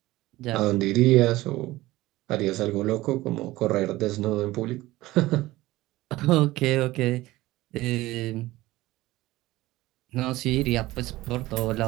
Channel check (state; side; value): quieter; left; 18.0 dB